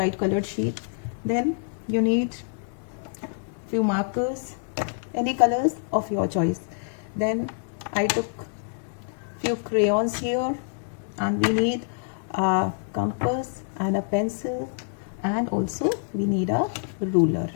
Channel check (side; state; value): right; silent; 61 dB below the other